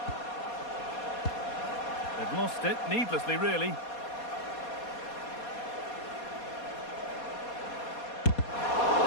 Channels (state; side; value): late; right; 4.2 ms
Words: They've lost it, needlessly, really.